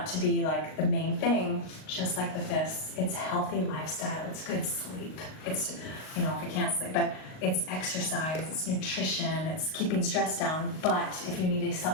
to be like the main thing, just like with this. It's healthy lifestyle, it's good sleep. It's, if you can't sleep, but it's exercise, it's nutrition, it's keeping stress down. But if you need a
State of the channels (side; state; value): right; late; 38 ms